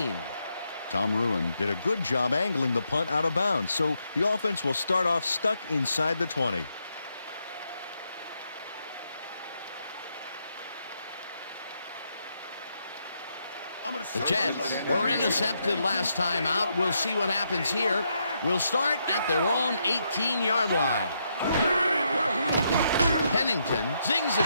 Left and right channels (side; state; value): both; inverted; correlation -0.79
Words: Tom Ruin did a good job angling the punt out of bounds, so the offense will start off stuck inside the 20. The Jets were intercepted last time out. We'll see what happens here. We'll start at their own 18-yard line. Pennington zings it